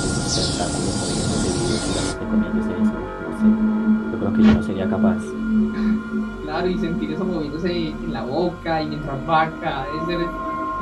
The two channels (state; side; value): identical; both; correlation 1.00